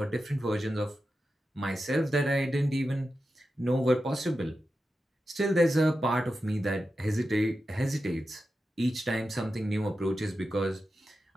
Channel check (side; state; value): both; normal; correlation 0.91